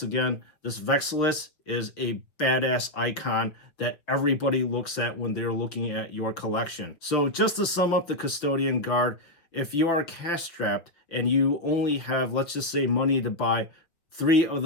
again, this Vexilus is a badass icon that everybody looks at when they're looking at your collection. So just to sum up the Custodian Guard, if you are cash strapped and you only have, let's just say, money to buy 3 of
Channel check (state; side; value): late; right; 5.6 ms